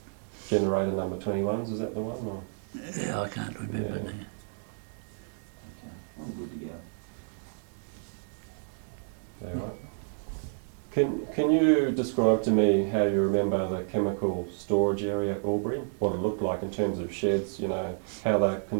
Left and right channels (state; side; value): silent; left; digital silence